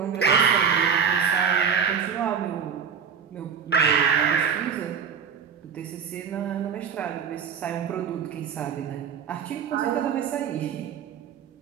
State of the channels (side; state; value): left; quieter; 7.0 dB